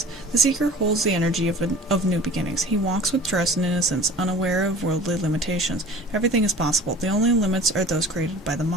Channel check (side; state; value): both; normal; correlation 0.43